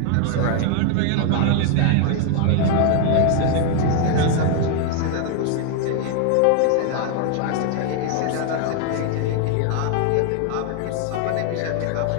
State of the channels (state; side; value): different; both; correlation 0.00